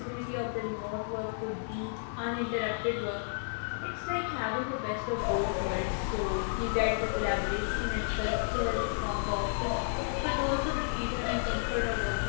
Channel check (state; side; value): silent; right; digital silence